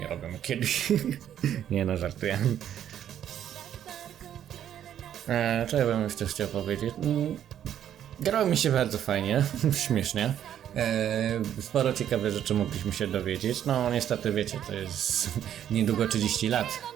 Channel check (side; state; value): left; quieter; 10.3 dB